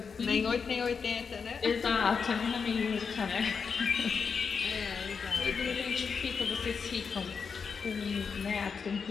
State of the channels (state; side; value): quieter; right; 5.8 dB